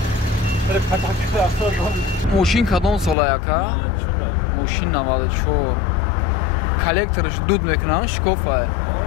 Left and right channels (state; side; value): drops out; right; at 3.2 s